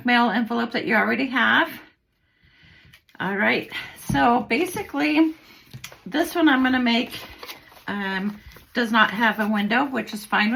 mail envelope that you already have. All right, so basically this one I'm going to make does not have a window, which is fine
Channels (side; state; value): both; identical; correlation 1.00